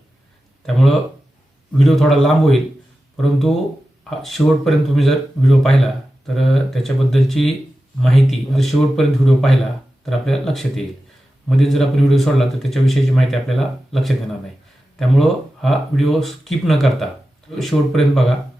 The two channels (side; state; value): both; normal; correlation 0.93